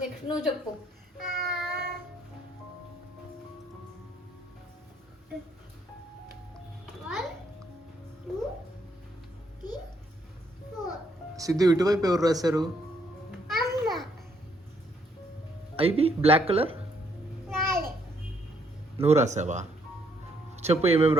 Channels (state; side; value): normal; both; correlation 0.71